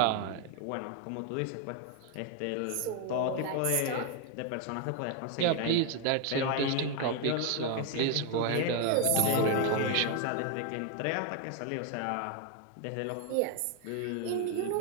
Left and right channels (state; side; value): different; both; correlation 0.01